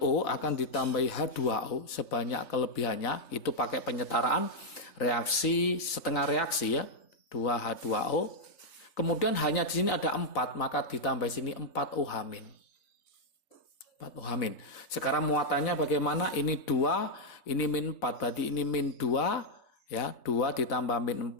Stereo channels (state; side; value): late; right; 3.9 ms